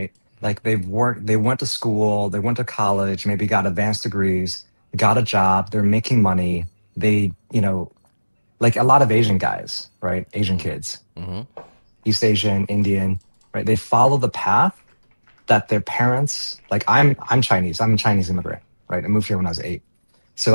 Like they went to school, they went to college, maybe got advanced degrees, got a job, they're making money. They, like a lot of Asian guys, right? Asian kids, Mm-hmm. East Asian, Indian, right? They follow the path that their parents, like I'm Chinese, I'm a Chinese immigrant, right? I moved here when I was 8.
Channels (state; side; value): inverted; both; correlation -1.00